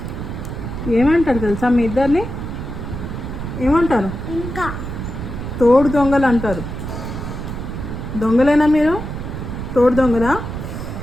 ఏమంటారు తెలుసా మీ ఇద్దరిని? ఏమంటారు? ఇంకా తోడు దొంగలు అంటారు. దొంగలేనా మీరు? తోడు దొంగలా?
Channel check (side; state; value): right; noise; rumble, 6 dB below the sound